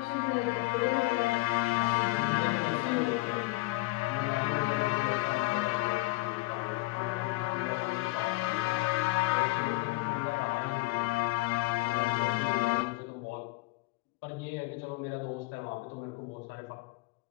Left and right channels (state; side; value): quieter; right; 21.7 dB